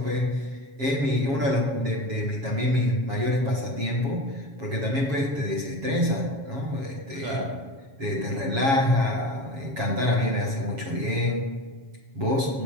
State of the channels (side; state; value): left; late; 7.3 ms